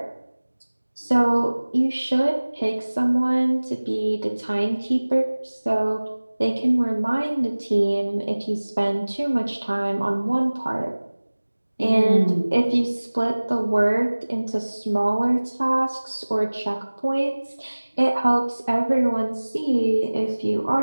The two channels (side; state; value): both; inverted; correlation -1.00